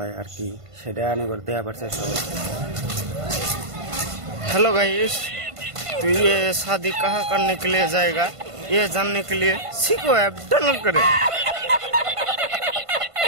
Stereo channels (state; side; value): late; left; 1.5 ms